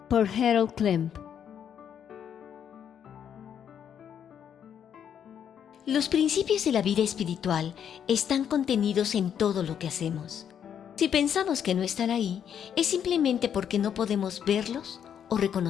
Por Harold Klemp. Los principios de la vida espiritual están contenidos en todo lo que hacemos. Si pensamos que no están ahí, es simplemente porque no podemos verlos o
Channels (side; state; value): right; quieter; 8.7 dB